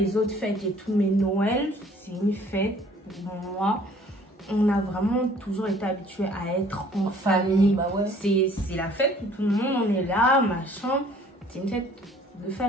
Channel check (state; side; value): normal; both; correlation 0.55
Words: autres fêtes et tout, mais Noël c'est une fête. Pour moi, on a vraiment toujours été habitué à être en famille. Bah ouais. C'est la fête où tout le monde on est là, machin. C'est une fête de